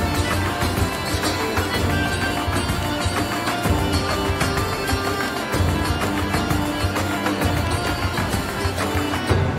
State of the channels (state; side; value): identical; both; correlation 1.00